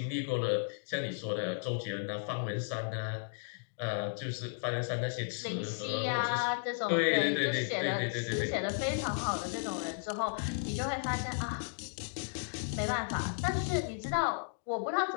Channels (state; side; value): silent; right; digital silence